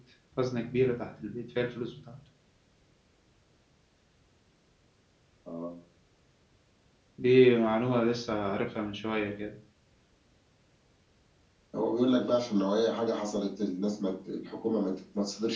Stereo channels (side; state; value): both; identical; correlation 1.00